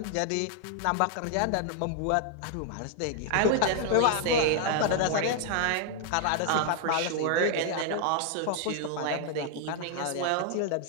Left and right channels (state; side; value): different; both; correlation 0.00